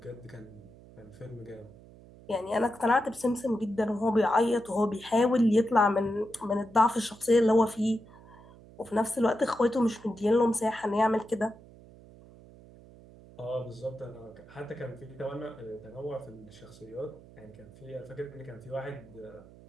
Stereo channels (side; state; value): right; noise; hum, 21 dB below the sound